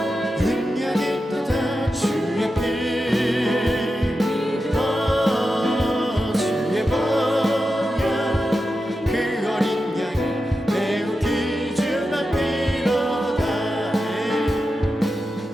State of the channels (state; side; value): normal; both; correlation 0.90